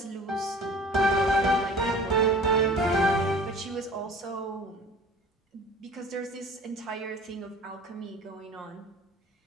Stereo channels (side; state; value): both; normal; correlation 0.44